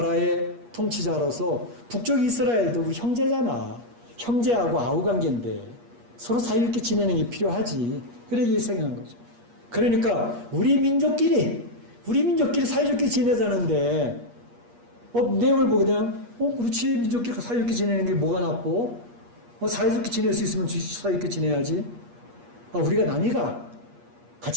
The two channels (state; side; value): late; left; 8.4 ms